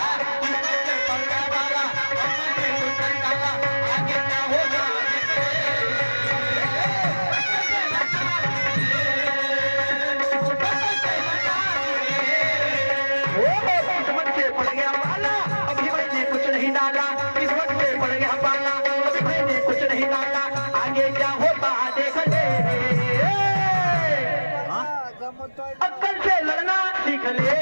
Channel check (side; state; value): both; inverted; correlation -1.00